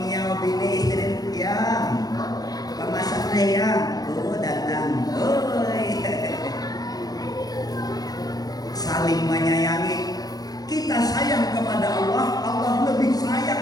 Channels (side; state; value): right; late; 0.19 ms